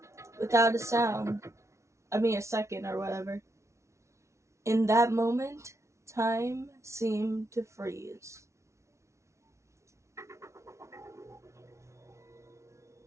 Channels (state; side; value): late; left; 0.14 ms